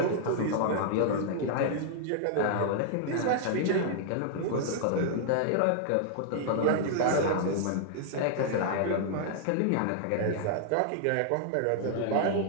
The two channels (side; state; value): both; different; correlation -0.01